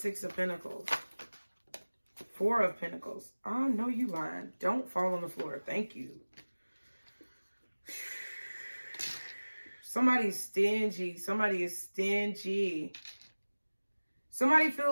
of Pentacles? Four of Pentacles. Oh, no, you lying. Don't fall on the floor. Thank you. Somebody's stingy. Somebody is stingy. Somebody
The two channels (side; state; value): both; inverted; correlation -1.00